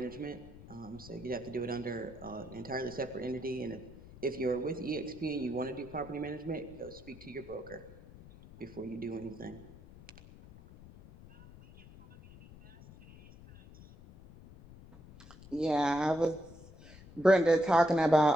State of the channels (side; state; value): left; noise; rumble, 19 dB below the sound